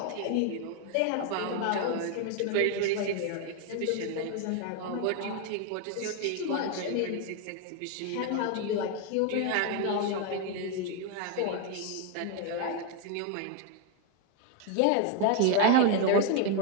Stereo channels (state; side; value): different; both; correlation 0.01